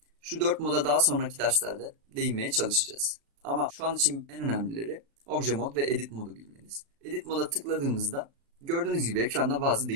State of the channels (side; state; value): left; late; 36 ms